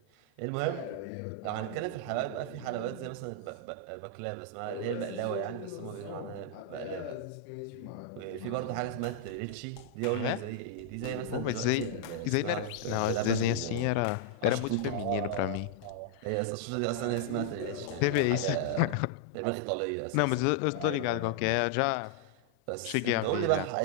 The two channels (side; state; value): both; different; correlation -0.01